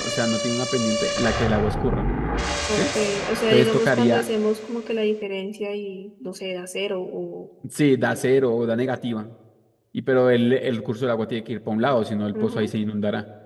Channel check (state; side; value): identical; both; correlation 1.00